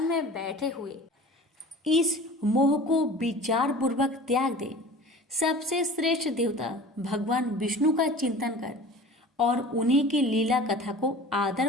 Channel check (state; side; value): normal; both; correlation 0.41